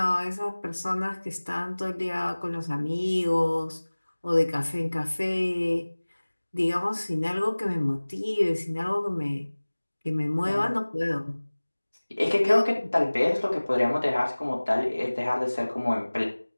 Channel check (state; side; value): inverted; both; correlation -1.00